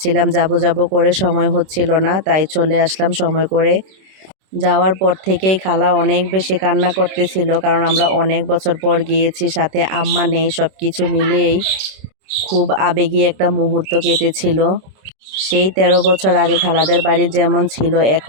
যাব করে সময় হচ্ছিল না। তাই চলে আসলাম সময় করে। যাওয়ার পর থেকেই খালা অনেক বেশি কান্না করতেছিল কারণ আমরা অনেক বছর পর গিয়েছি, সাথে আম্মা নেই। সবকিছু মিলিয়েই খুব আবেগী একটা মুহূর্ত কেটেছিল। সেই ১৩ বছর আগে খালাদের বাড়ি যেমন ছিল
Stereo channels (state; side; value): late; left; 26 ms